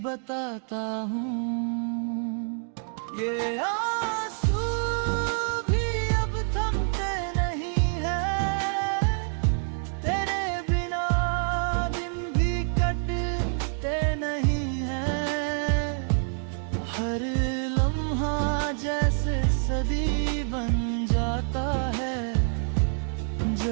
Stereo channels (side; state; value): left; silent; 57 dB below the other